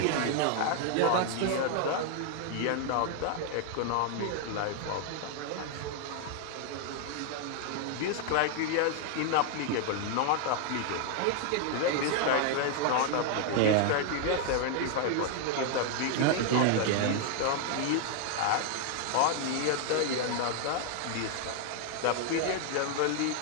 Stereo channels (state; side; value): different; both; correlation 0.00